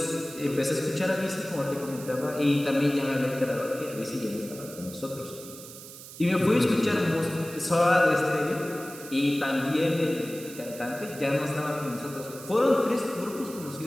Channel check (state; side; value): noise; right; hiss, 15 dB below the sound